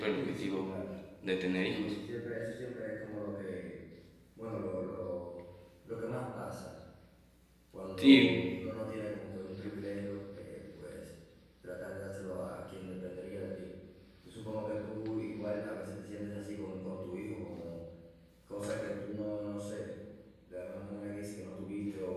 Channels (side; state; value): both; identical; correlation 1.00